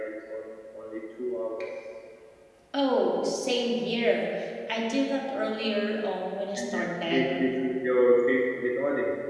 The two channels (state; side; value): identical; both; correlation 1.00